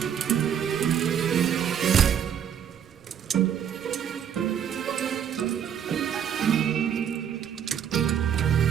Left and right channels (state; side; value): quieter; left; 8.7 dB